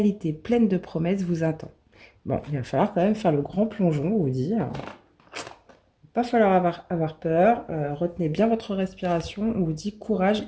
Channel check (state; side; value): identical; both; correlation 1.00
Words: pleine de promesses vous attend. Bon, il va falloir quand même faire le grand plongeon, on vous dit. Il va pas falloir avoir peur. Retenez bien votre respiration. On vous dit courage